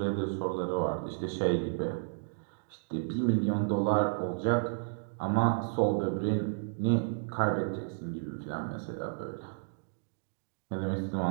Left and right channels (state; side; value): silent; left; digital silence